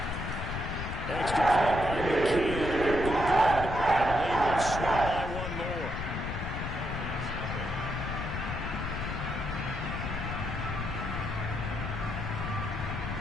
Extra point by McKee. Good. And the lead will swell by 1 more.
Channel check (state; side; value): noise; left; rumble, 4 dB below the sound